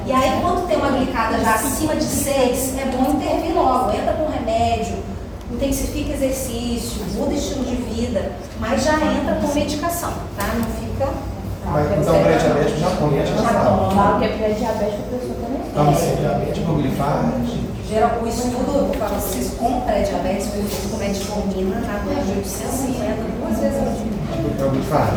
E aí, quando tem uma glicada já acima de 6, é bom intervir logo. Entra com remédio, intensifica exercício, muda estilo de vida, mas já entra com medicação, tá? Não fica... Mas então o pré-diabético já toma, já sabe. Claro que é pré-diabético, a pessoa também. Toma pré-diabético, glifage. O estudo para vocês com pré-diabetes foi feito com metformina na dose de 850, 2 vezes ao dia. É o glifage.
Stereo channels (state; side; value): identical; both; correlation 1.00